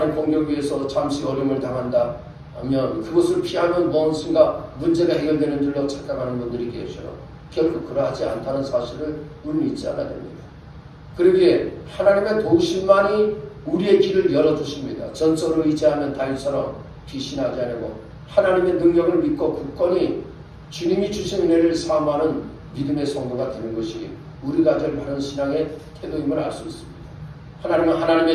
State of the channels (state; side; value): identical; both; correlation 1.00